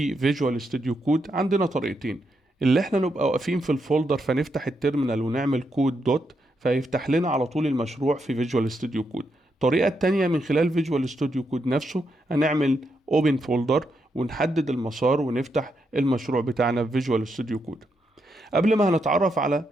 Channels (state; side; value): normal; both; correlation 0.81